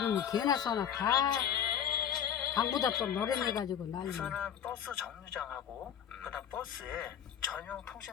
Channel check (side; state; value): right; quieter; 9.1 dB